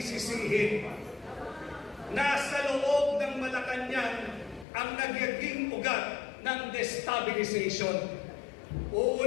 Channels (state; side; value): drops out; right; at 4.7 s